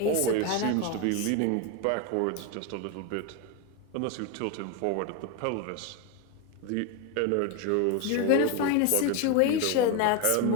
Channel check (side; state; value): both; different; correlation 0.02